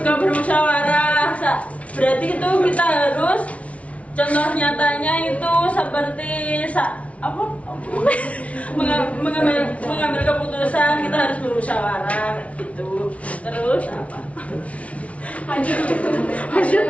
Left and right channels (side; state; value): right; late; 0.065 ms